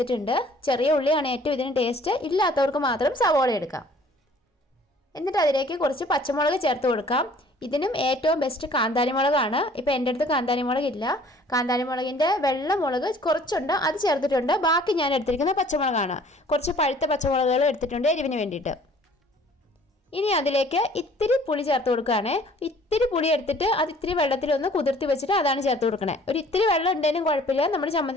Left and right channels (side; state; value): both; normal; correlation 0.54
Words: ചെറിയ ഉള്ളിയാണ് ഏറ്റവും ഇതിന് ടേസ്റ്റ്. ഇല്ലാത്തവർക്ക് മാത്രം സവോള എടുക്കാം. എന്നിട്ട് അതിലേക്ക് കുറച്ച് പച്ചമുളക് ചേർത്ത് കൊടുക്കാം. ഇതിനും ഏറ്റവും ബെസ്റ്റ് കാന്താരി മുളകാണ്. ഇപ്പോൾ എൻ്റെ അടുത്ത് കാന്താരി മുളകില്ല. കാന്താരി മുളകിൻ്റെ വെള്ള മുളക് കുറച്ചുണ്ട്, അത് ചേർത്തിട്ടുണ്ട്. ബാക്കി ഞാൻ എടുത്തിരിക്കുന്നത് പച്ചമുളകാണ്. കുറച്ച് പഴുത്ത പച്ചമുളകുകൾ എടുത്തിട്ടുണ്ട് എരിവിന് വേണ്ടിയിട്ട്. ഇനി അതിലേക്ക് ഇത്തിരി പുളി ചേർത്ത് കൊടുക്കുകയാണ്. ഇത്തിരി പുളി എടുത്തിട്ട് അത് ഇത്തിരി വെള്ളത്തിലൊന്ന് കുതിർത്തി വെച്ചിട്ട് അതാണ് ചേർത്ത് കൊടുക്കണേ. ഒരു ഇത്തിരി വെള്ളം ഉണ്ടെങ്കിലും കുഴപ്പമില്ല, നമ്മുടെ